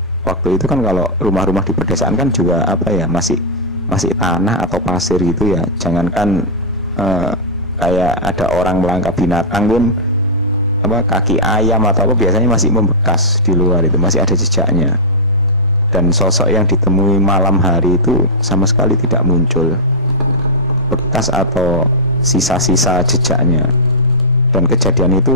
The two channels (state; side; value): normal; both; correlation -0.10